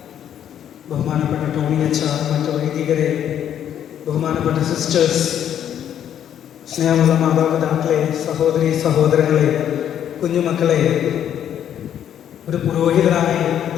ബഹുമാനപ്പെട്ട ടോണി അച്ഛ, മറ്റു വൈദികരെ, ബഹുമാനപ്പെട്ട സിസ്റ്റേഴ്സ്, സ്നേഹമുള്ള മാതാപിതാക്കളെ, സഹോദരി സഹോദരങ്ങളെ, കുഞ്ഞുമക്കളെ, ഒരു പുരോഹിതനായി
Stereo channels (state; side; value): quieter; right; 9.9 dB